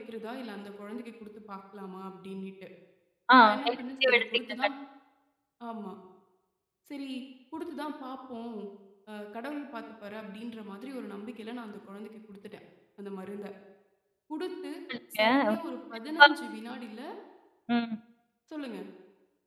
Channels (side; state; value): both; identical; correlation 1.00